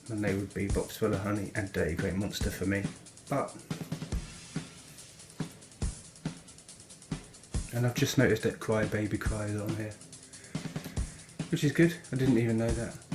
and they would be Box Full of Honey and Dirty Great Monster for me. But And I've just noticed that Cry Baby Cry is on here, which is good. I didn't even know that,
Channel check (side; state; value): both; identical; correlation 1.00